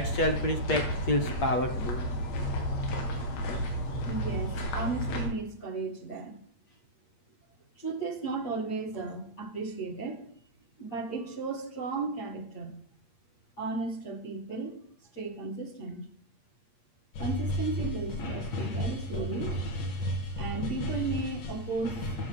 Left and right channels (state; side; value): late; right; 8.5 ms